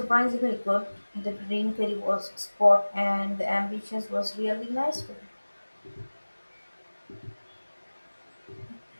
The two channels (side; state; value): both; inverted; correlation -1.00